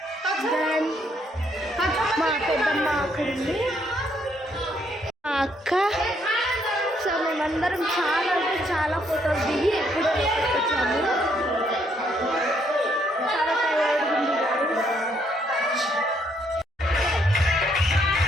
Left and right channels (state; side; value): normal; both; correlation 0.71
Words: దెన్ మా పెద్దమ్మ అక్కడ ఉంది, మా అక్క. సో మేమందరం చాలా అంటే చాలా ఫొటోస్ దిగి ఎప్పుడు వచ్చాము. చాలా టైర్డ్ ఉంది